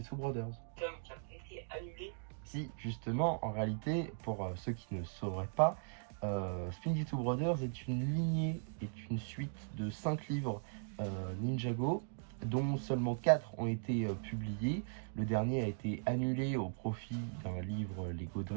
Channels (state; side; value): silent; left; digital silence